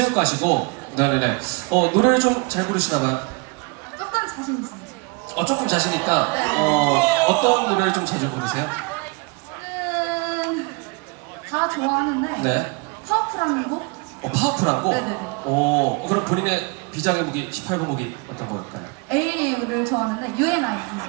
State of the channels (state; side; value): quieter; left; 30.2 dB